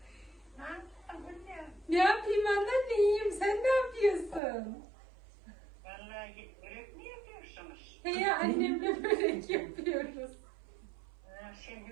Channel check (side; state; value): left; drops out; at 4.4 s